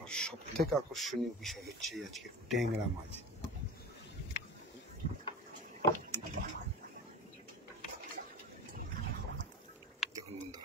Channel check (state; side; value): normal; both; correlation 0.32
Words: আর সব থেকে আকর্ষণীয় বিষয় হচ্ছে আজকে ট্যাংরা মাছ। দেখুন বন্ধু,